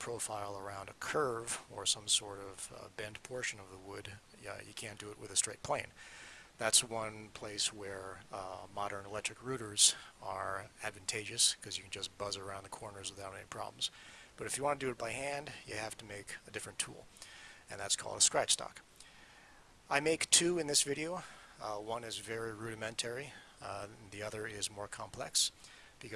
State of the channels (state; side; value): identical; both; correlation 1.00